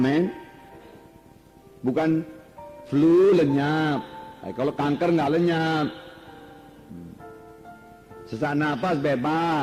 Bukan flu lenyap. Kalau kanker nggak lenyap. Sesak napas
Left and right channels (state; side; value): identical; both; correlation 1.00